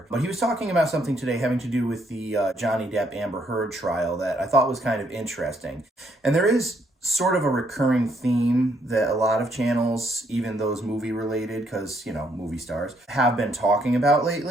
But he was talking about something today having to do with the Johnny Depp Amber Heard trial that I thought was kind of interesting. And there is sort of a recurring theme that a lot of channels, even those movie related, because, movie stars, have been talking about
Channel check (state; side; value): normal; both; correlation 0.71